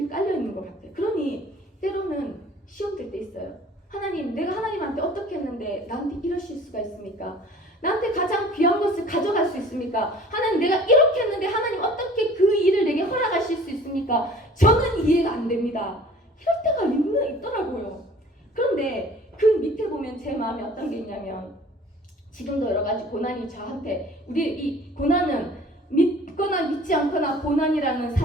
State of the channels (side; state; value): both; normal; correlation 0.49